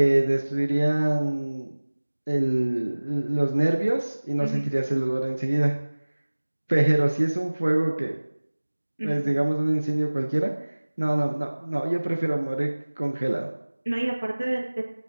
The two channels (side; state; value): both; inverted; correlation -1.00